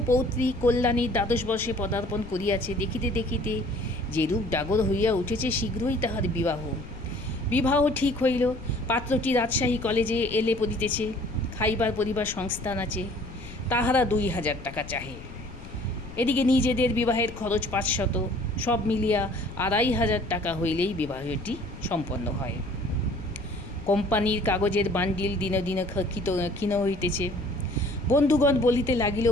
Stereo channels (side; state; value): left; noise; rumble, 14 dB below the sound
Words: পৌত্রী কল্যাণীর দ্বাদশ বর্ষে পদার্পণ করিয়াছে। দেখিতে দেখিতে যেরূপ ডাগর হইয়া উঠেছে, শীঘ্রই তাহার বিবাহ ঠিক হইল। পাত্রটি রাজশাহী কলেজে এলে পড়িতেছে, খাইবার পরিবার সংস্থান আছে, তাহারা 2000 টাকা চাহে। এদিকে নিজেদের বিবাহের খরচ 500, সব মিলিয়া 2500 টাকা হইলেই বিবাহটি সম্পন্ন হয়। কোম্পানির কাগজের বান্ডিল দিনে দিনে ক্ষীণ হইতেছে। বন্ধুগণ বলিতে লাগিল,